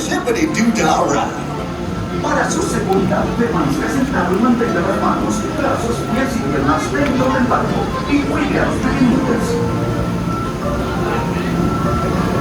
ride. Para su seguridad, permanezca sentado y mantenga las manos, brazos, pies y piernas dentro del barco y cuide a los pequeñitos.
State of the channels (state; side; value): identical; both; correlation 1.00